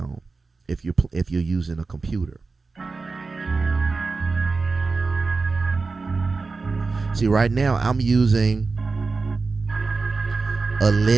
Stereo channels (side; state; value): left; quieter; 4.1 dB